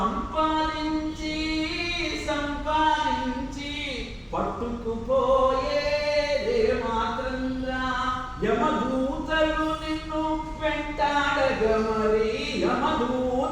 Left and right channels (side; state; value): both; identical; correlation 1.00